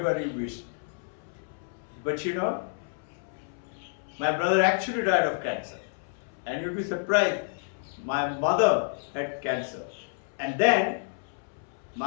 you wish. But my brother actually died of cancer. And you'll be surprised, my mother had cancer. And then,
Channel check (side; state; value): right; silent; 58 dB below the other